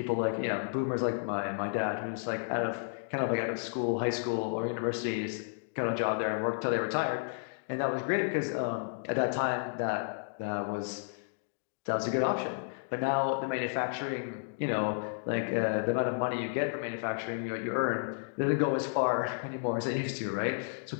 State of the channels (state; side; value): silent; right; digital silence